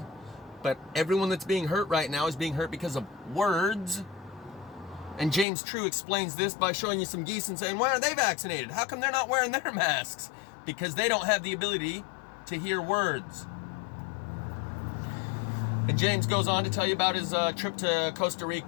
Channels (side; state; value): right; drops out; at 5.5 s